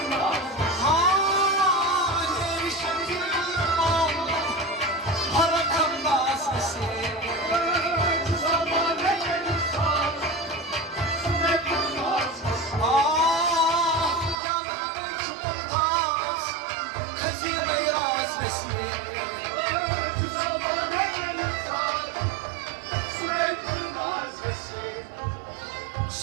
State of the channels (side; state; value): left; drops out; at 14.4 s